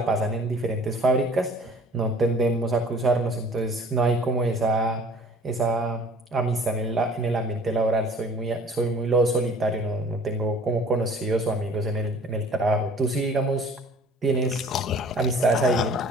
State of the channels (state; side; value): normal; both; correlation 0.50